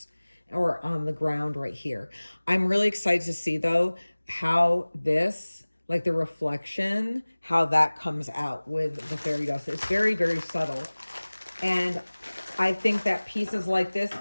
or on the ground right here. I'm really excited to see though how this, like the reflection, how that comes out with the fairy dust. It's very, very subtle. And I think that pieces like this,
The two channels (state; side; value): inverted; both; correlation -1.00